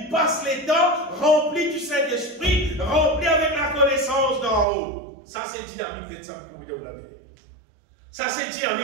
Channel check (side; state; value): left; drops out; at 4.7 s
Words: passe les temps, rempli du Saint-Esprit, rempli avec la connaissance d'en haut. Ça c'est dynamique de ça pour vous dire la vérité. Ça c'est